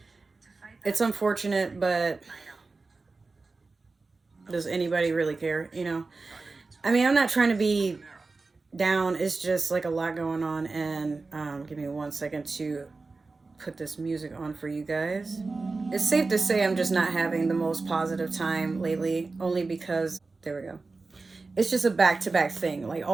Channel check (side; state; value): left; quieter; 3.8 dB